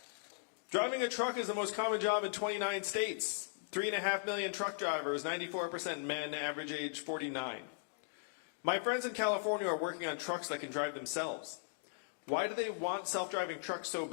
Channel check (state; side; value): silent; right; digital silence